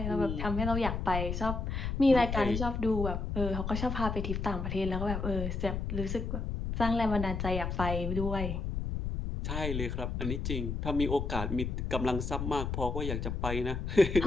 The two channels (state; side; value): noise; left; rumble, 3 dB below the sound